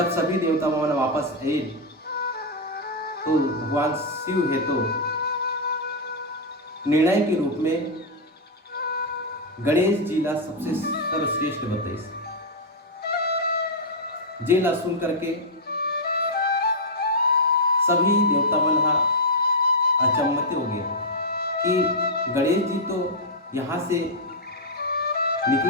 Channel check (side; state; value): both; normal; correlation -0.03